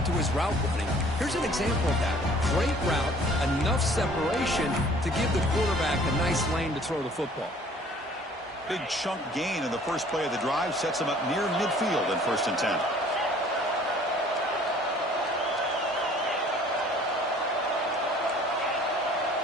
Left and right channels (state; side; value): normal; both; correlation 0.53